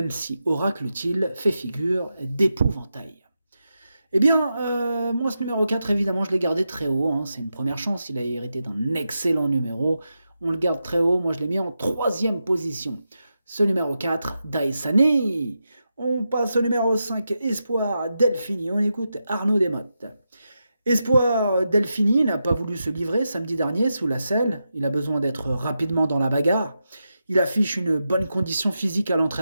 si Oracle-t-il fait figure d'épouvantail. Eh bien, moi, ce numéro 4, évidemment, je l'ai gardé très haut. C'est une première chance. Il a hérité d'un excellent numéro. On le garde très haut. Moi, je l'ai mis en troisième position. Ce numéro 4, Daisani. On passe au numéro 5, Espoir Delphini. On écoute Arnaud Desmottes. Espoir Delphini n'a pas voulu se livrer samedi dernier sous la selle. Il a besoin d'être rapidement dans la bagarre. Il affiche une bonne condition physique à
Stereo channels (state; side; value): inverted; both; correlation -0.88